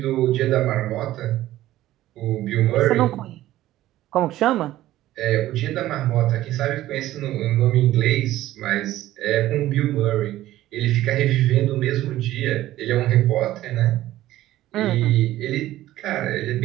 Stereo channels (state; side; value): quieter; left; 14.8 dB